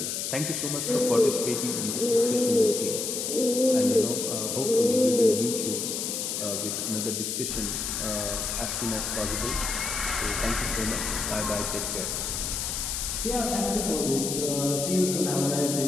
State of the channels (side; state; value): left; noise; hiss, 2 dB below the sound